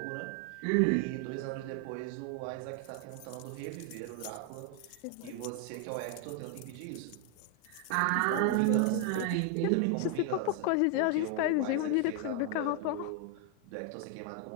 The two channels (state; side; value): different; both; correlation 0.01